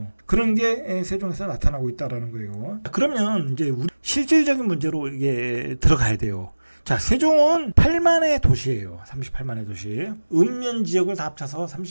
그런 게 세종에서 나타나고 있다라는 거예요. 그러면 이제 우리 실질적인 문제로 이게 들어가야 돼요. 자, 세종은 8만의 도시예요. 38만의 도시. 읍면 지역을 다 합쳐서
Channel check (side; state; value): both; inverted; correlation -1.00